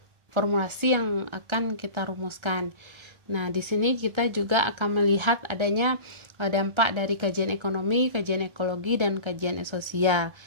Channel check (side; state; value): left; late; 1.3 ms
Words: formulasi yang akan kita rumuskan. Nah, di sini kita juga akan melihat adanya dampak dari kajian ekonomi, kajian ekologi, dan kajian sosial.